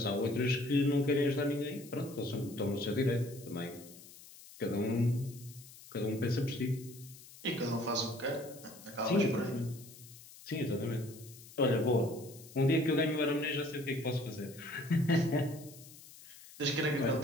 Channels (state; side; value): noise; left; hiss, 19 dB below the sound